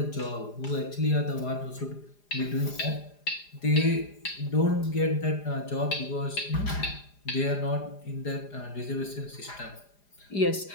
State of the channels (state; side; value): late; right; 4.9 ms